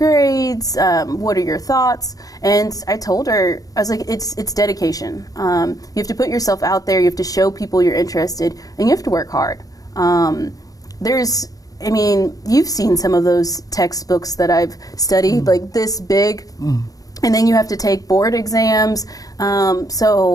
What are your thoughts? And I told her, I was like, it's dedication. You have to put yourself out there. You have to show people you're interested, and you have to work hard. You've seen some of those textbooks that I've studied, like this big. And then you have to take board exams.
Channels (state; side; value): late; right; 0.17 ms